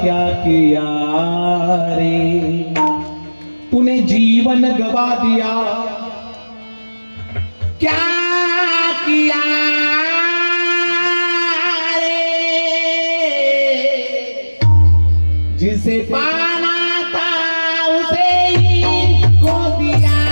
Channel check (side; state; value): both; inverted; correlation -1.00